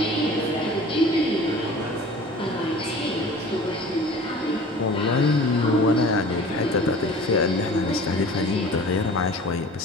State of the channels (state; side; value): normal; both; correlation 0.43